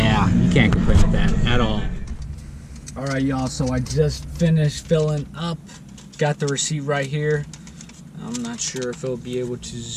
you can't complain with that at all. All right, y'all, so I just finished filling up. Got the receipt right here. I'm not sure if it'll be able to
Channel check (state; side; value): identical; both; correlation 1.00